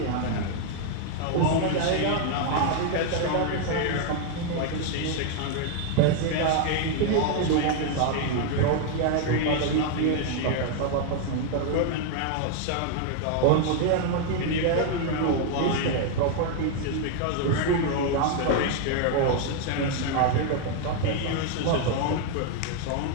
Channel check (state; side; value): different; both; correlation 0.00